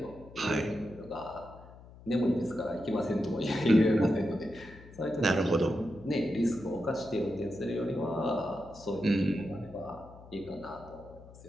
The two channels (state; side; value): noise; left; hum, 19 dB below the sound